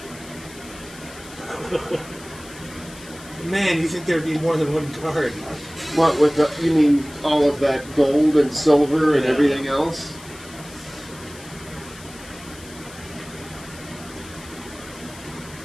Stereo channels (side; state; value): left; noise; hiss, 18 dB below the sound